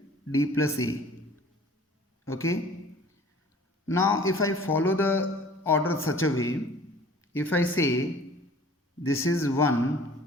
D plus A. Okay. Now if I follow the order such a way, if I say this is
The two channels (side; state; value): both; normal; correlation 0.48